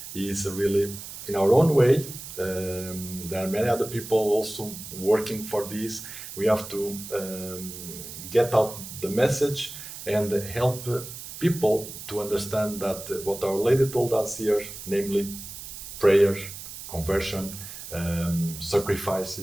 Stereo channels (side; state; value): right; noise; hiss, 11 dB below the sound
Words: is really in our own way. There are many other people also working for this. We have to get out the message and help people to understand that what Our Lady told us here, namely prayer, conversion,